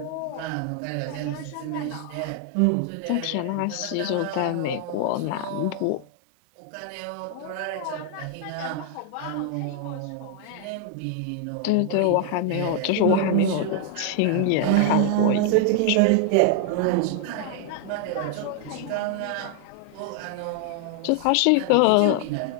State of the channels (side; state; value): both; different; correlation 0.00